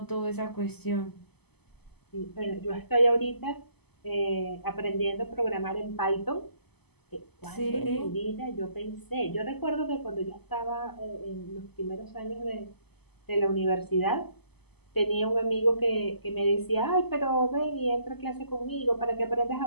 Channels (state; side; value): late; right; 0.98 ms